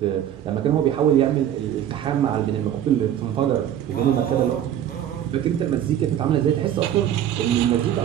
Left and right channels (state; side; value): quieter; left; 10.7 dB